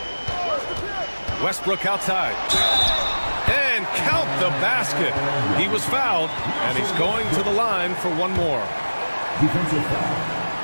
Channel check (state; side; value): inverted; both; correlation -1.00